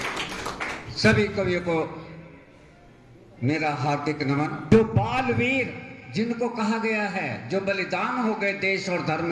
सभी कवियों को मेरा हार्दिक नमन। जो बालवीर जिनको कहा गया है, जो बलिदान हो गए देश और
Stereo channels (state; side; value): identical; both; correlation 1.00